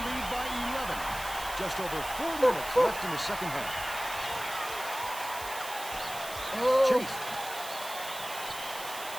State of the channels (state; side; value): noise; right; hiss, 10 dB below the sound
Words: lead by 11. Just over 4 minutes left in the second half. Chase.